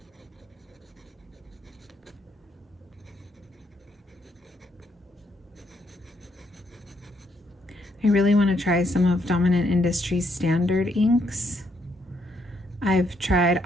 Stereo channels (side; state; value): both; normal; correlation 0.74